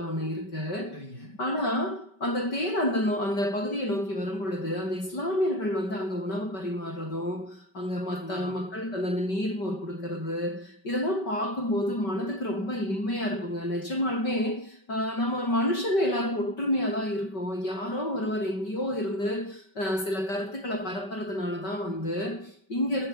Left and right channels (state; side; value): late; right; 5.2 ms